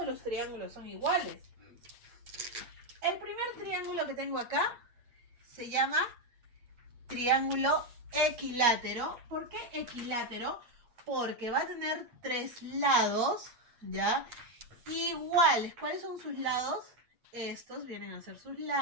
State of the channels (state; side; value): late; left; 8.4 ms